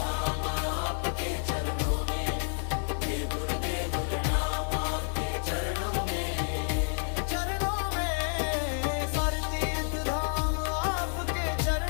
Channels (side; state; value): right; silent; 58 dB below the other